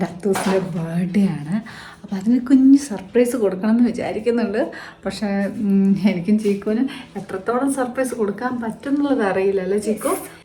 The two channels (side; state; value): both; identical; correlation 1.00